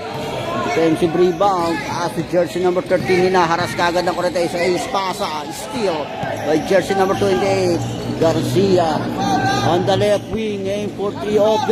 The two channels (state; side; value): identical; both; correlation 1.00